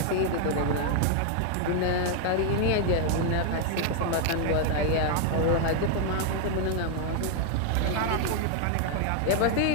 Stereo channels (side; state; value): both; different; correlation 0.00